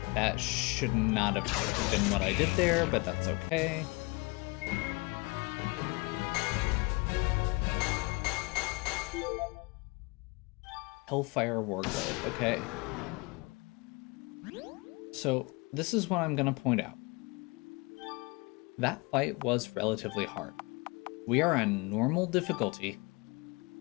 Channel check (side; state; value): right; quieter; 27.0 dB